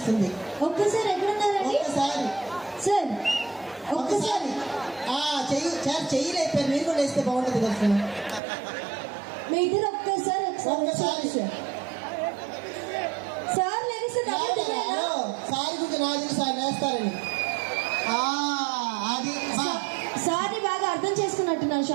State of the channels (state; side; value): drops out; left; at 8.4 s